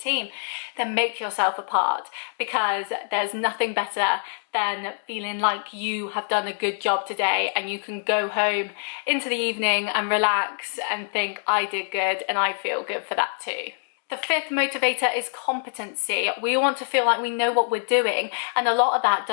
then make yourself a part, because there's nothing better than feeling like you have done a good job today and you can go home into the evening and relax and think, I did good and I feel good for that too. The fifth motivator is competency. We want to feel like we know what we're doing, and a lot of that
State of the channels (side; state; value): right; silent; digital silence